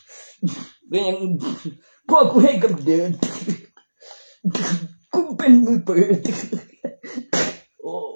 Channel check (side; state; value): both; inverted; correlation -1.00